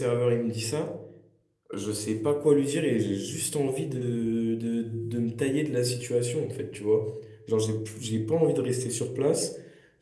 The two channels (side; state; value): both; identical; correlation 1.00